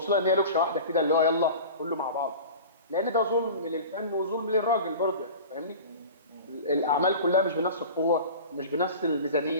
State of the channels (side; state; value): both; inverted; correlation -0.36